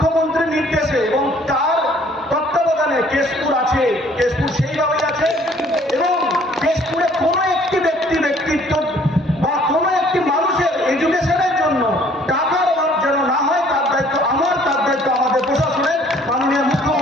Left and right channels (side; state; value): both; normal; correlation 0.58